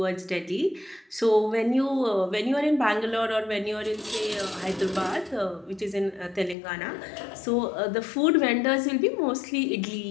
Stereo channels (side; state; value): right; drops out; at 6.6 s